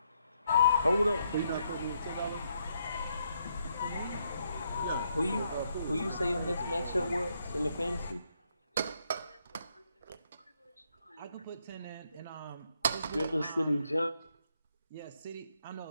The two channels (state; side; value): inverted; both; correlation -0.75